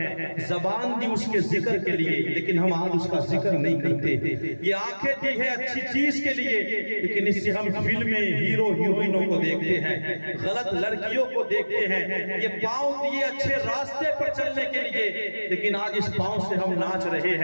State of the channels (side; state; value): both; inverted; correlation -1.00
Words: زبان دی اس کے ذکر کے لیے، لیکن ہم آج اس کا ذکر نہیں کرتے۔ یہ آنکھیں دی ہے اچھی چیز کے لیے، لیکن اس سے ہم فلمیں، ہیرو ہیروئنوں کو دیکھتے ہیں، غلط لڑکیوں کو دیکھتے ہیں۔ یہ پاؤں دیے اچھے راستے پر چلنے کے لیے، لیکن آج اس پاؤں سے ہم ناچ رہے